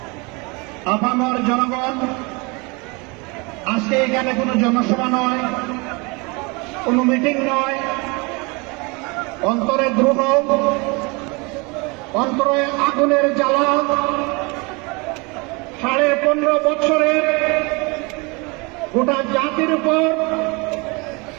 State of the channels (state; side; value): quieter; left; 28.3 dB